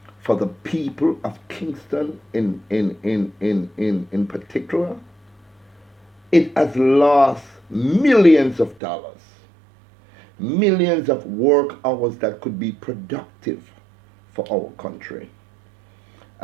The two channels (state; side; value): drops out; left; at 8.8 s